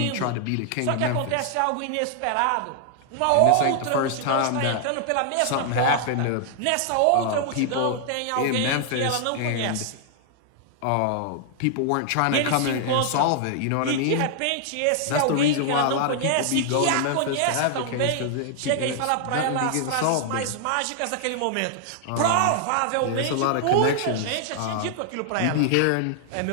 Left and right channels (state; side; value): different; both; correlation -0.01